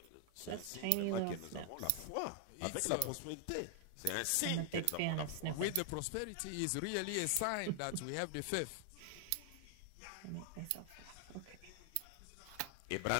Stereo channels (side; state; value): both; different; correlation 0.00